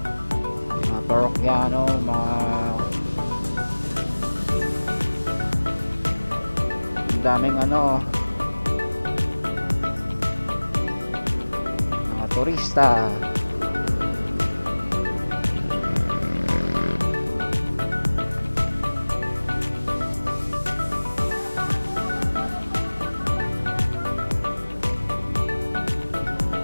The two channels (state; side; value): inverted; both; correlation -1.00